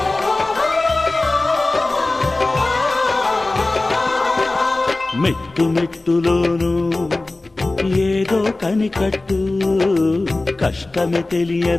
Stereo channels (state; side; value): quieter; right; 3.0 dB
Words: మెట్టు మెట్టులోను ఏదో కనికట్టు కష్టమే